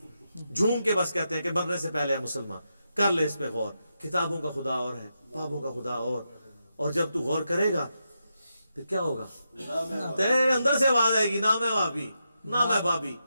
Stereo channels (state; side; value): inverted; both; correlation -0.86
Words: جھوم کے بس کہتے ہیں کہ مرنے سے پہلے ہے مسلمان کر لے اس پہ غور. کتابوں کا خدا اور ہے، بابوں کا خدا اور جب تو غور کرے گا پھر کیا ہوگا؟ تیرے اندر سے آواز آئے گی، نہ میں وابی نہ میں بابی،